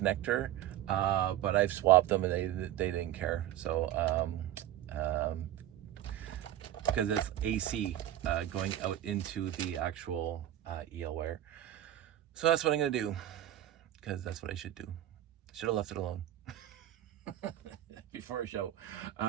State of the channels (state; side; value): quieter; left; 12.7 dB